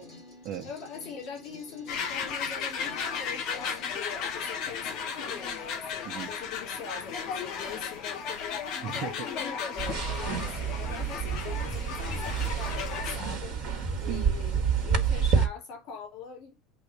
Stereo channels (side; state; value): both; normal; correlation 0.36